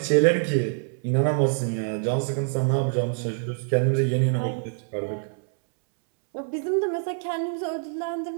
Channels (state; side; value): silent; left; 61 dB below the other